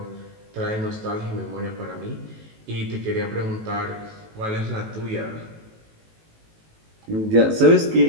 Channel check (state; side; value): late; left; 18 ms